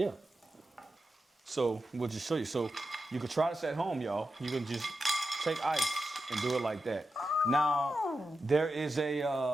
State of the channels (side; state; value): both; normal; correlation 0.90